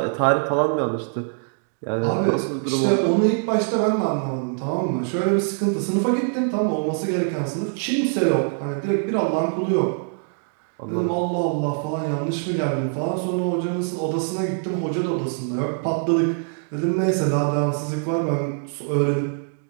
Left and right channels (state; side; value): silent; left; digital silence